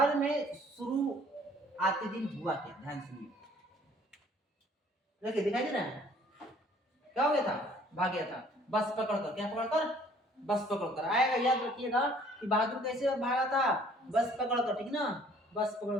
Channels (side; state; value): both; normal; correlation 0.57